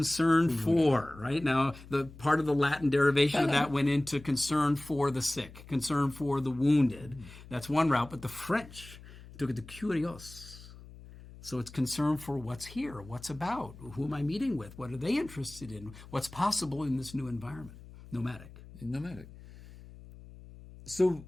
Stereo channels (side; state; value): left; noise; hum, 18 dB below the sound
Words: for, right? Now, the part of the Latin derivation of that went into concern for the sick, concern for the wounded. That's one route, but the French took it to curios. So it's concern for what's here, what's about, who am I meeting with, what are they interested in, what's possible in this new environment. Nomadic. So